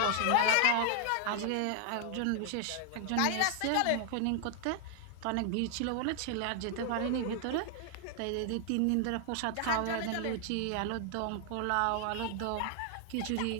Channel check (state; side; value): different; both; correlation 0.00